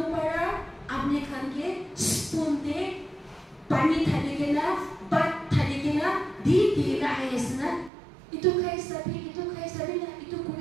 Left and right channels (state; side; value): drops out; left; at 7.9 s